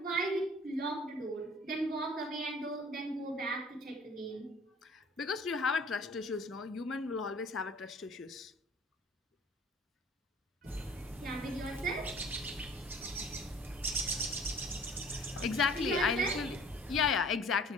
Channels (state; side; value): normal; both; correlation 0.50